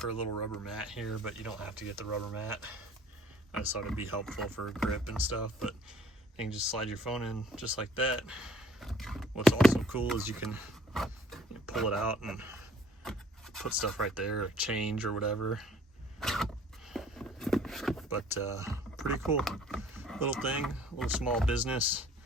a little rubber mat here, but you don't have to get the rubber mat. I just thought it'd be helpful for grip and stuff, but you can just slide your phone in just like that. What's also cool is you can pull it out and put stuff right there, or change or whatever. But pretty cool little thing, a little small business.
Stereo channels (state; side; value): normal; both; correlation 0.56